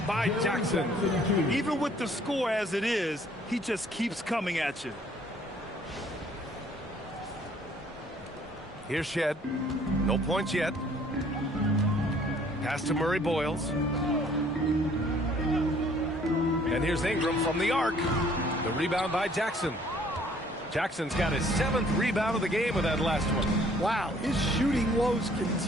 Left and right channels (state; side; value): normal; both; correlation 0.59